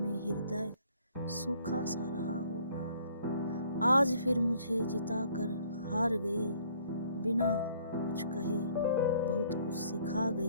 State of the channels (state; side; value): inverted; both; correlation -0.61